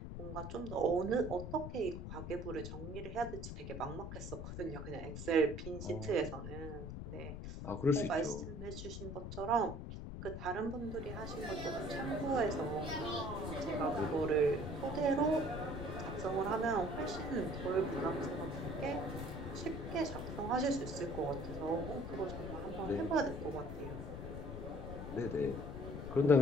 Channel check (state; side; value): noise; left; rumble, 7 dB below the sound